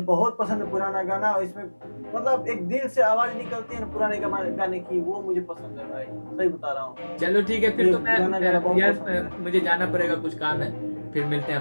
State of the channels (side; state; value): both; inverted; correlation -1.00